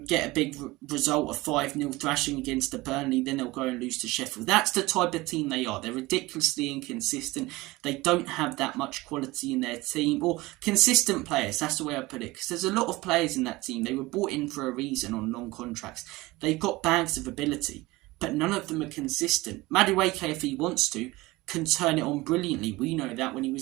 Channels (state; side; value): quieter; left; 20.6 dB